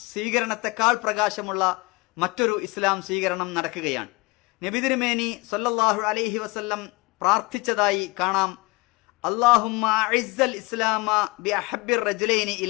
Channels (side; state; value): right; quieter; 25.4 dB